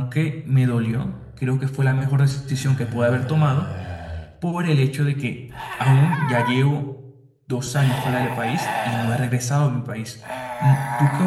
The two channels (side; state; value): both; identical; correlation 1.00